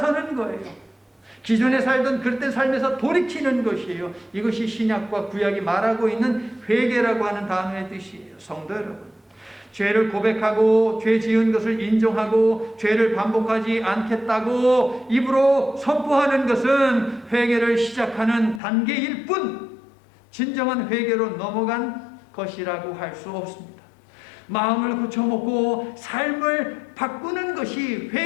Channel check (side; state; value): right; drops out; at 18.6 s